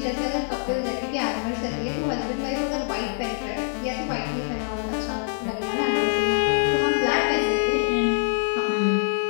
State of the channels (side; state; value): right; silent; 62 dB below the other